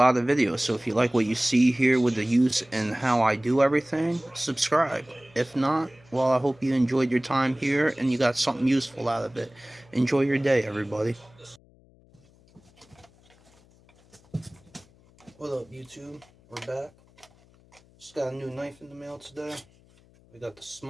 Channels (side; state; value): left; noise; hum, 29 dB below the sound